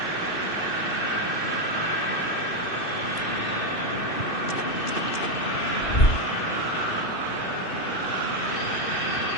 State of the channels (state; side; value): late; right; 2.6 ms